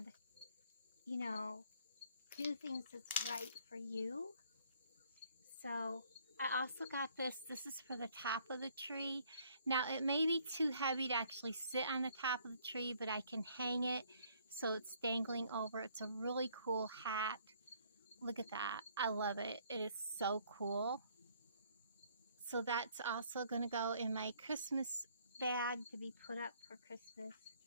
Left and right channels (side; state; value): both; inverted; correlation -0.63